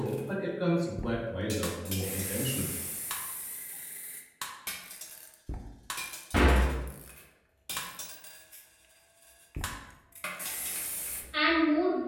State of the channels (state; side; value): identical; both; correlation 1.00